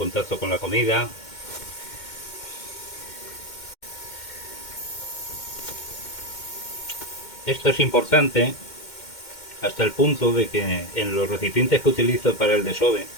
con la comida. Esto es importante hasta el punto de que en los recipientes que utilizo para el desove,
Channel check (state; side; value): late; right; 2.1 ms